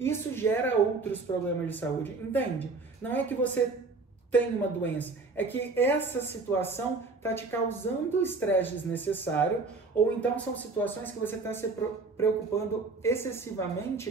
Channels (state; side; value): quieter; left; 3.9 dB